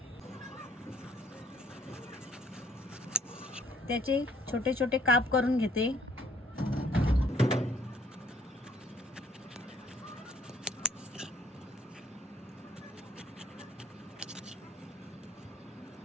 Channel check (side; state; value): both; normal; correlation 0.62